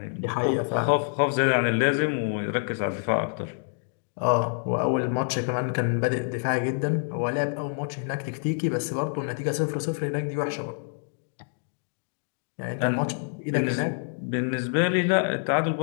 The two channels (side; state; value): right; silent; digital silence